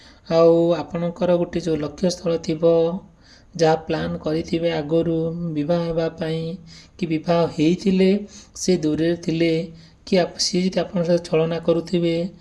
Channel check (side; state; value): both; identical; correlation 1.00